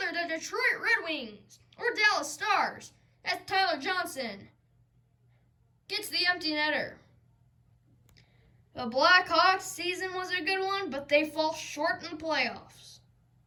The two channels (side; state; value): both; identical; correlation 1.00